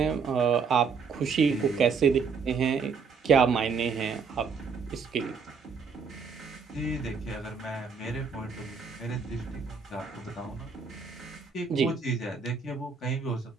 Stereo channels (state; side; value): quieter; left; 5.6 dB